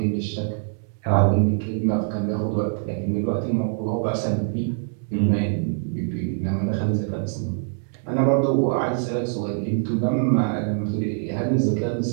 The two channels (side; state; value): left; silent; digital silence